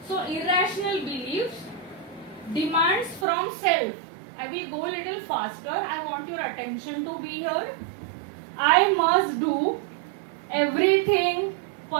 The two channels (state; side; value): drops out; left; at 3.2 s